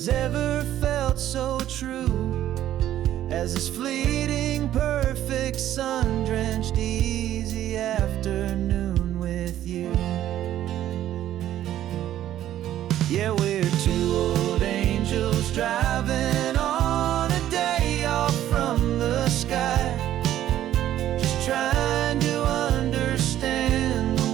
ever felt so true as this fleeting, perfect, sun-drenched, easy afternoon with you. Yeah, we're two old angels driving on a day off from the sky, just trying to understand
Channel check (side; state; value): left; quieter; 12.3 dB